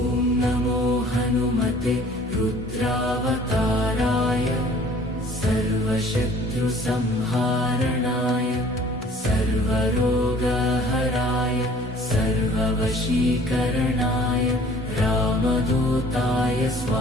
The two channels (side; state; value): both; normal; correlation 0.52